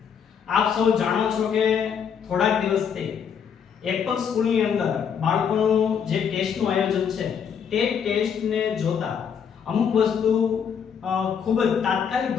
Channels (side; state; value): right; quieter; 7.4 dB